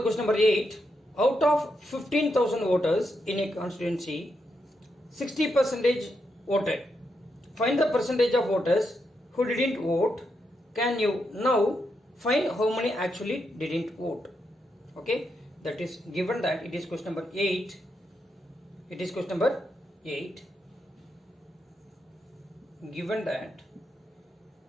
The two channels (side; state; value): both; normal; correlation 0.82